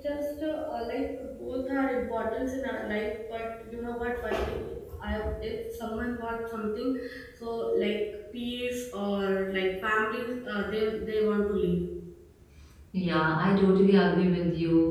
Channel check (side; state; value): both; identical; correlation 1.00